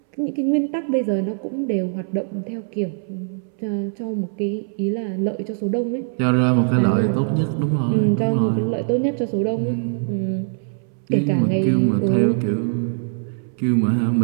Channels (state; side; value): silent; left; 64 dB below the other